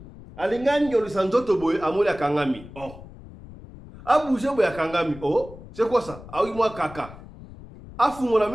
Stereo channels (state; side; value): noise; left; rumble, 17 dB below the sound